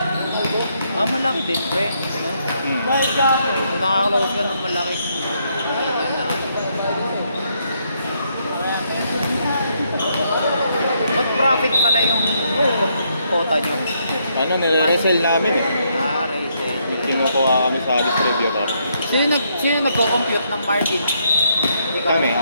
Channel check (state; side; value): inverted; both; correlation -0.75